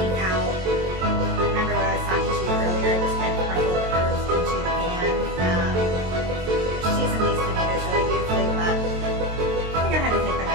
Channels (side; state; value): left; late; 22 ms